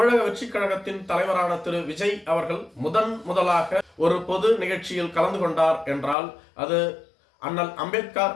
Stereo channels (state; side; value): drops out; right; at 6.2 s